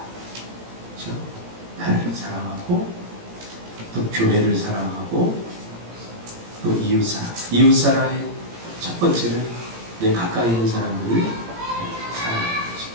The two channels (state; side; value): late; left; 17 ms